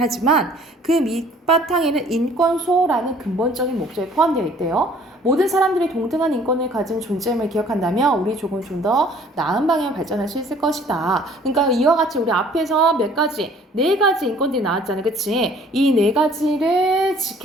그 밑바탕에는 인권 수호라는 근본적인 목적이 포함되어 있대요. 모든 사람들이 동등한 인권을 가진 존재임을 기억한다면 우리 조금 좀 더 나은 방향을 발전할 수 있을 것이다. 그러니까 이와 같이 우리 앞에서 네 가지 인권들이 나왔잖아요. 그치? 이 네 가지를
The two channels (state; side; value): normal; both; correlation 0.55